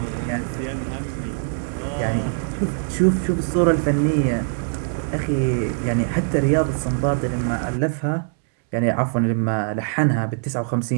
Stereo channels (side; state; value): left; silent; 64 dB below the other